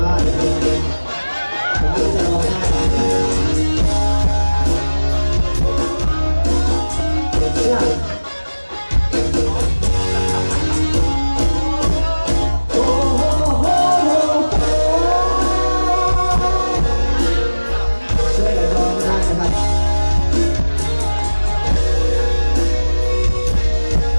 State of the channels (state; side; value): inverted; both; correlation -1.00